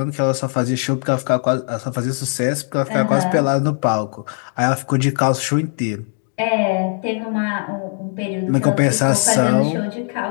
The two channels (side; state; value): right; silent; 56 dB below the other